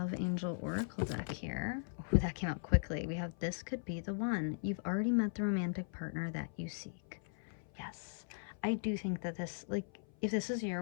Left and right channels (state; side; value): silent; right; 52 dB below the other